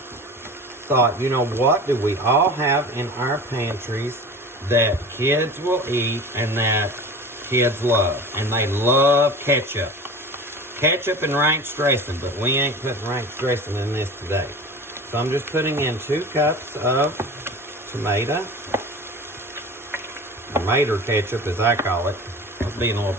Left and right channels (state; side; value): normal; both; correlation 0.36